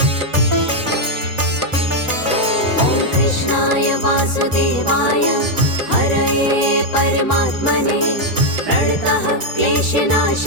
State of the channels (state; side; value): late; left; 3.9 ms